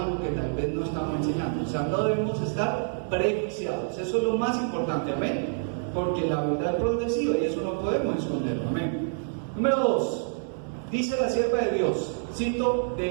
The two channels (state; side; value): silent; left; digital silence